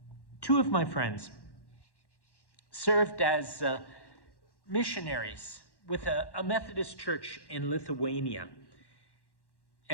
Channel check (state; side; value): late; right; 1.1 ms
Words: Two of my friends served as missionaries with a Methodist church in Lithuania.